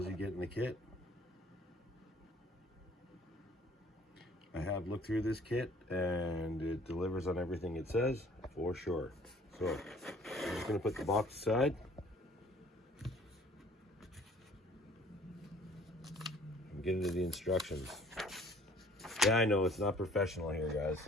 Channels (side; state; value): both; normal; correlation 0.55